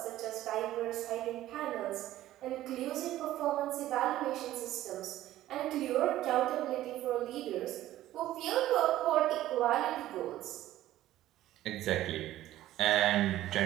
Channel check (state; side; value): quieter; left; 14.2 dB